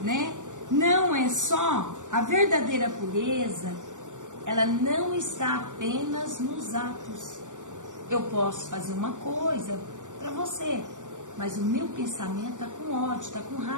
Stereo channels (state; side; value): late; left; 0.86 ms